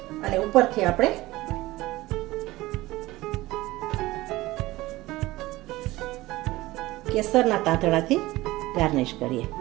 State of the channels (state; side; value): quieter; left; 18.5 dB